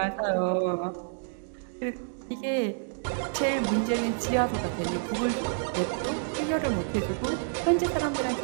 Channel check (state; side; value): silent; left; digital silence